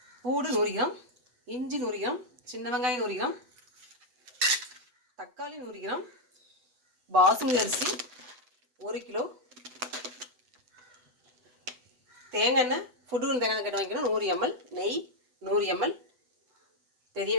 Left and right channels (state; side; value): late; left; 8.0 ms